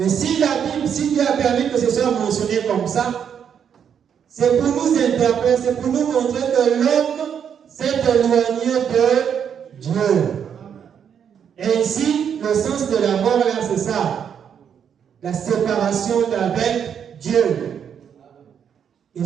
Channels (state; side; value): quieter; left; 8.0 dB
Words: si la Bible, si Dieu a permis que ce soit mentionné comme ça, c'est pour nous interpeller, c'est pour nous montrer que l'homme s'est éloigné de Dieu. Et ici, le sens de la mort là, c'est ça. La séparation d'avec Dieu. Et